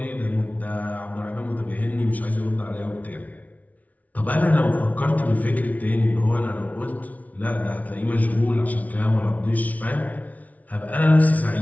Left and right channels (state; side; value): late; right; 0.072 ms